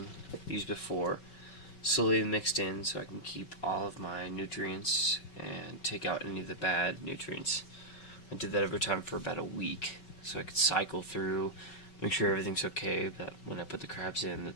used before, slowly mixed in so I can keep all of my nutrients and take out any of the bad nutrients. I did that every time for about a week so I could cycle through, make sure everything's okay, that when I put the crabs in that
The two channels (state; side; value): late; right; 5.3 ms